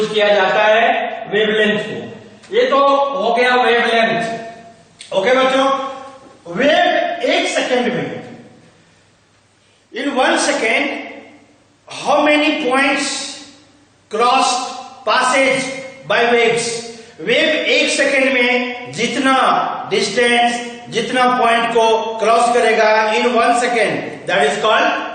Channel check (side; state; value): both; identical; correlation 1.00